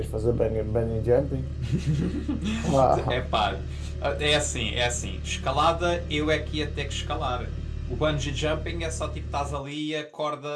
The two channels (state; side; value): identical; both; correlation 1.00